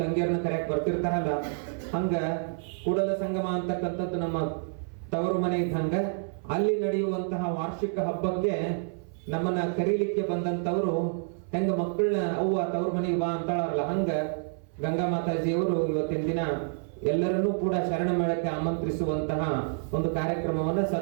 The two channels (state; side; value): silent; left; 56 dB below the other